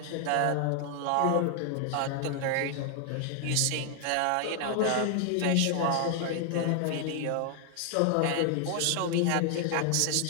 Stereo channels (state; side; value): different; both; correlation 0.00